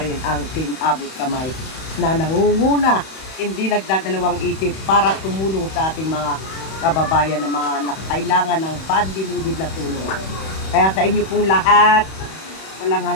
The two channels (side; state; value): right; late; 31 ms